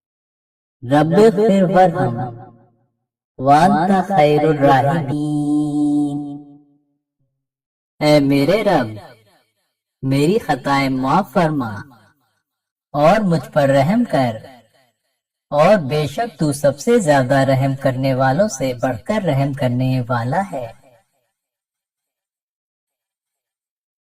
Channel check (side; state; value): both; identical; correlation 1.00